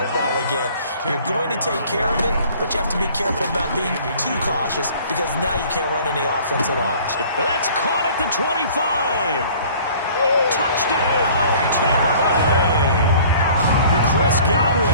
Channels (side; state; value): both; inverted; correlation -0.51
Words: again. You're going to take care of it, but you have to be careful about being too cautious because now you can't run any offense at all. That's caught at the 25. Touchdown, Tampa Bay. Chris